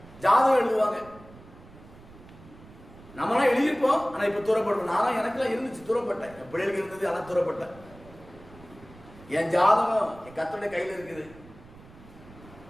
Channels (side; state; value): right; noise; rumble, 21 dB below the sound